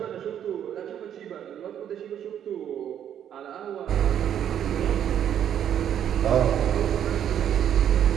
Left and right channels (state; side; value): quieter; left; 9.7 dB